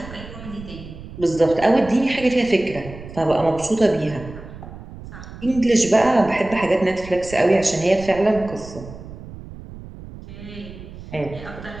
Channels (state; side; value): noise; right; rumble, 14 dB below the sound